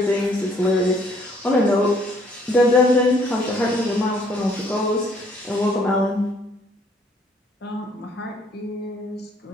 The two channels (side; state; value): both; normal; correlation 0.63